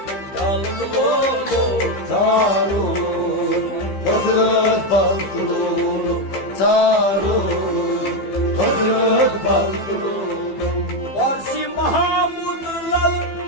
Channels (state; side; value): late; right; 15 ms